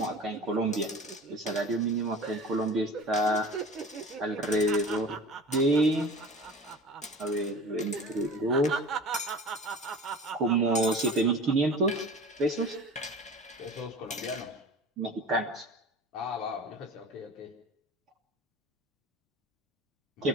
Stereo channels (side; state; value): both; normal; correlation 0.39